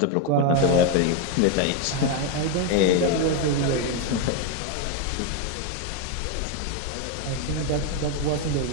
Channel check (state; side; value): different; both; correlation 0.01